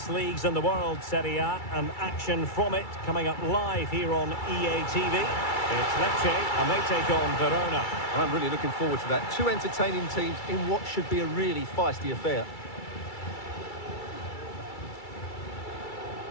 leagues in the world, Serie A, and action from it coming up live here on EA TV. It's Lecce, and they take on Verona. I'm really looking forward to that. Two entertaining teams in what should be a really feisty affair.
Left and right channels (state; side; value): late; right; 2.3 ms